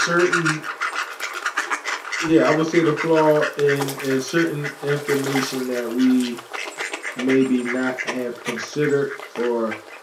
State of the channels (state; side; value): identical; both; correlation 1.00